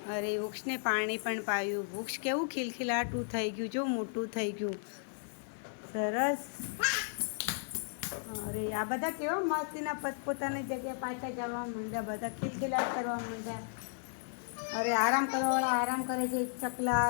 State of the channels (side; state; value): right; silent; digital silence